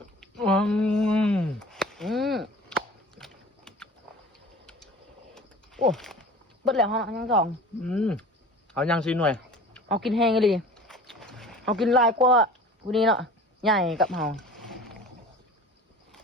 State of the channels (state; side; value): normal; both; correlation 0.41